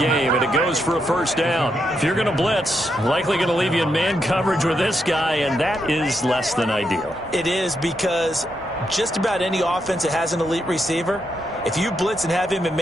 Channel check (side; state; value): both; normal; correlation 0.81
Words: and it goes for a first down. If you're going to blitz, likely going to leave you in man coverage with this guy, and that is less than ideal. It is, because just about any offense that has an elite receiver, if you blitz and have him in